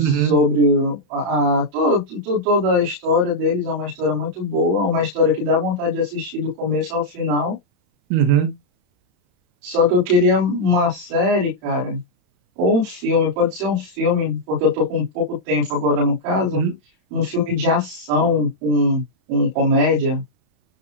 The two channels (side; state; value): left; late; 34 ms